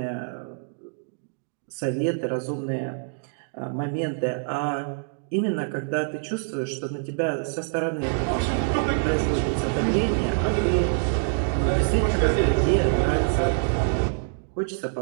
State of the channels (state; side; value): silent; left; digital silence